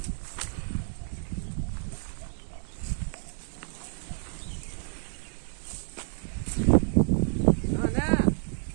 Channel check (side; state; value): left; silent; 58 dB below the other